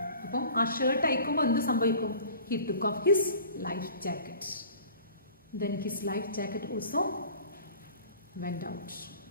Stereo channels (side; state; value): both; inverted; correlation -0.45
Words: അപ്പം ആ shirt അയക്കുമ്പോൾ എന്ത് സംഭവിക്കും? He took off his life jacket. Then his life jacket also went out.